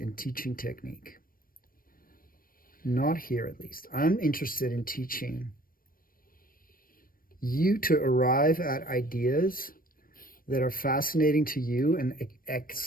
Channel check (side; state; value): right; late; 0.41 ms